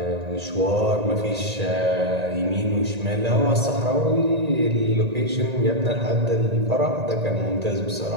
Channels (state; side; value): late; left; 1.9 ms